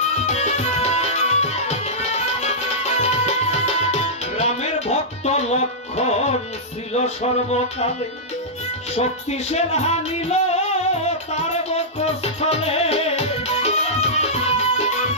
রামের ভক্ত লক্ষণ ছিল সর্বকালে, শক্তিশাল হানিল বক্ষস্থলে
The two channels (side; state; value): both; normal; correlation -0.13